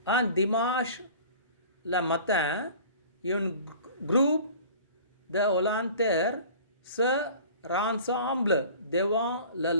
Un dimanche le matin, un groupe de volontaires se rassemble devant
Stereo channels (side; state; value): both; inverted; correlation -0.44